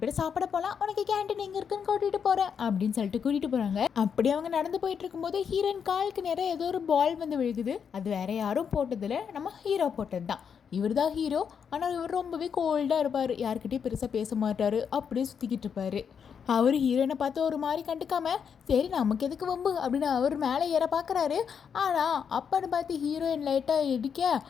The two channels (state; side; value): quieter; right; 7.1 dB